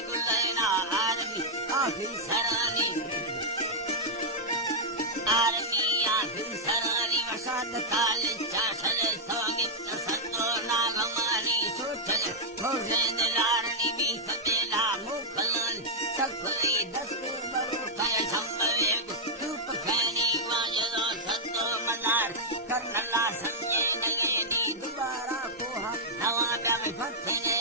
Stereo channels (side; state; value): both; normal; correlation -0.06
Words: गुलैना आर्मी आखिरी सरानी आर्मिया सरानी वसाद काल चाशले सोगित सत्तो नागमानी सोचले भोजन लारणी भी सतेला मुखलन सफरी दस्ते बरु कय संभवे धूप खैनी वाजलो सत्तो मदार कर्नला संजय नयनी दोबारा कोहा नवा प्याम फत्ने